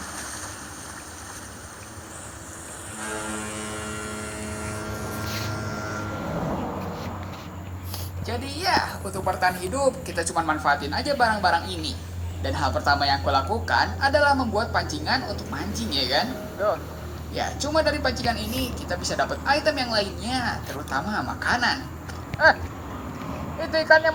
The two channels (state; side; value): identical; both; correlation 1.00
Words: Jadi ya, untuk bertahan hidup, kita cuma manfaatin aja barang-barang ini. Dan hal pertama yang aku lakukan adalah membuat pancingan untuk mancing, ya kan? Ya, cuma dari pancingan ini kita bisa dapat item yang lainnya, terutama makanan. Itu ikannya